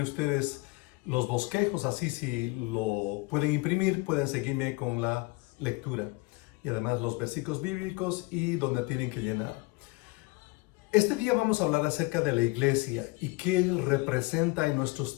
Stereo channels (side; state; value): right; quieter; 25.6 dB